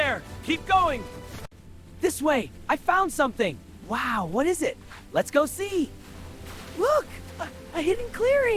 Keep going! This way, I found something! Wow, what is it? Let's go see! Look! A hidden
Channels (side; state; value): both; identical; correlation 1.00